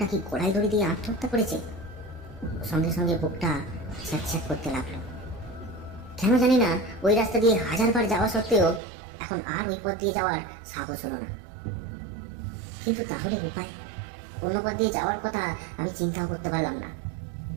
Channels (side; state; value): left; drops out; at 8.8 s